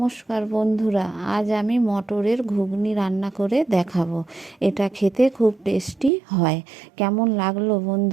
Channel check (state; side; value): drops out; left; at 6.1 s